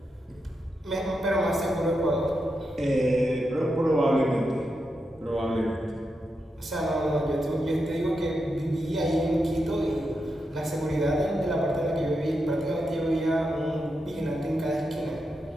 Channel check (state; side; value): normal; both; correlation 0.86